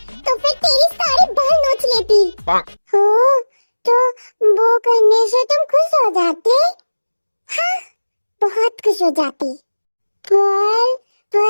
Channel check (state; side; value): inverted; both; correlation -1.00